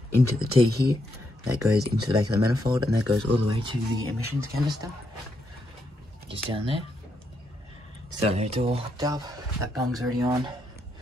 into the T here, that goes into the back of the manifold, and that goes all the way to the emissions canister, just down there. So it's all hooked up, that bung's already on.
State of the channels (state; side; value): normal; both; correlation 0.79